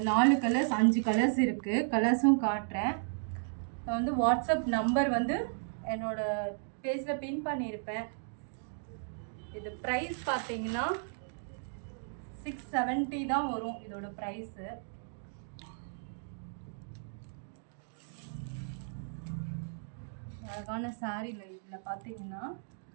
4 கலர்ஸ் 5 கலர்ஸ் இருக்குது. கலர்ஸும் காட்டுறேன். நான் வந்து வாட்ஸ்அப் நம்பர் வந்து என்னோடய பேஜில் பின் பண்ணியிருப்பேன். இது ப்ரைஸ் பார்த்தீங்கன்னா 670 தான் வரும் இதோட ப்ரைஸு. அழகான சாரீல இதில் பார்த்தீங்கன்னா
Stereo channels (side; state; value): left; silent; digital silence